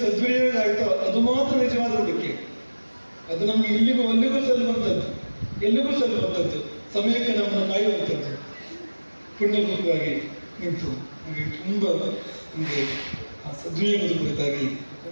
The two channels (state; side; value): inverted; both; correlation -1.00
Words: ಸದ್ವಿನಿಯೋಗ ಆಯಿತೋ ಅದು ಮಾತ್ರ ನಿಜವಾದ ಉಳಿಕೆ. ಅದು ನಮ್ಗೆ ಇಲ್ಲಿಗೂ ಅಲ್ಲಿಗೂ ಸಲ್ಲುವಂಥದ್ದು, ಎಲ್ಲಿಗೂ ಸಲ್ಲುವಂಥದ್ದು, ಸಮಯಕ್ಕೆ ನಮ್ಮನ್ನು ಕಾಯುವಂಥದ್ದು. ಪುಣ್ಯಭೂತವಾಗಿ ನಿಂತು ನಮಗೆ ತುಂಬ ನಮಗೆ ಆ ಸದ್ವಿನಿಯೋಗದ ಕುರಿತಾಗಿ